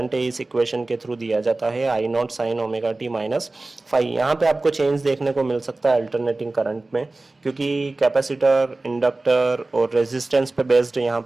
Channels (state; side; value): quieter; left; 3.1 dB